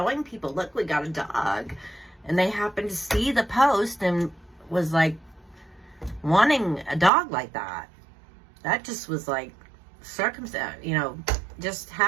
people, look, we got a dog. And they happened to see the post and was like wanting a dog like that. That just was like circumstance, you know, just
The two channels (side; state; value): left; drops out; at 7.1 s